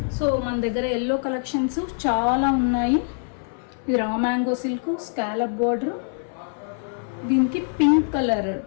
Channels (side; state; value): right; silent; 58 dB below the other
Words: సో మన దగ్గర ఎల్లో కలెక్షన్స్ చాలా ఉన్నాయి. ఇది raw mango silk scallop border, దీనికి pink colour